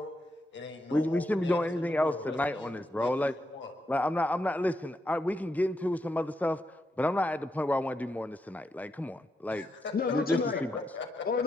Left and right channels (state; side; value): normal; both; correlation 0.83